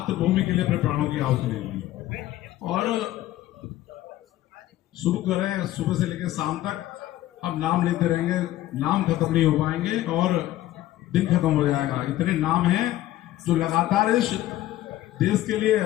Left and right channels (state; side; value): quieter; right; 14.7 dB